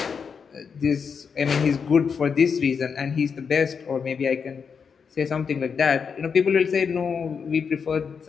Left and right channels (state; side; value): quieter; right; 6.1 dB